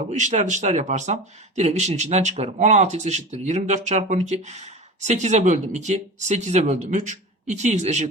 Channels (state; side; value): normal; both; correlation 0.31